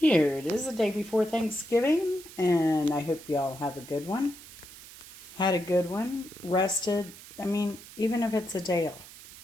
it is, the day before Thanksgiving, and I hope y'all have a good one. Had a good one, rested. I mean, even if it's a day off,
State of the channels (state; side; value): noise; right; hiss, 17 dB below the sound